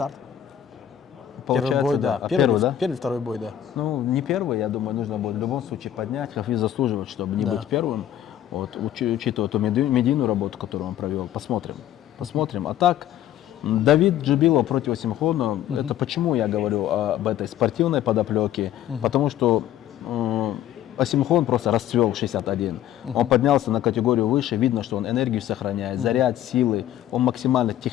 Первый бой, да. Первый, да? Первый, второй бой, да. Ну, не первый, я думаю, нужно будет в любом случае поднять. Хафиз заслуживает, чтобы не быть первым. Вот, учитывая ту медийную работу, которую он провел. Посмотрим. Посмотрим. А так, Давид Джибилов против Осимхона, это почему я говорю об этой спортивной подоплеке? Потому что Осимхон просто расцвел в 61. Он поднялся на категорию выше, видно, что он энергию сохраняет, заряд, силы, он максимально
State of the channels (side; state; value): right; quieter; 11.5 dB